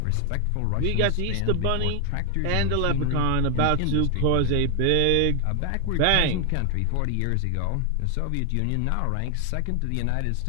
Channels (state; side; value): different; both; correlation 0.00